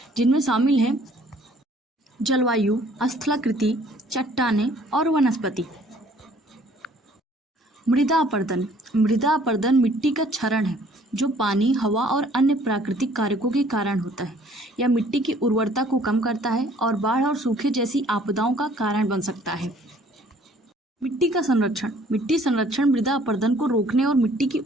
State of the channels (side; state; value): both; normal; correlation 0.58